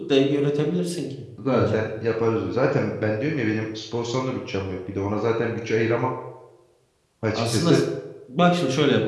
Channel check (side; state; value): both; identical; correlation 1.00